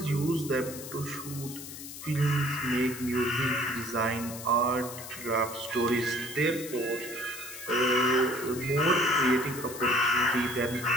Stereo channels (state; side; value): noise; left; hiss, 11 dB below the sound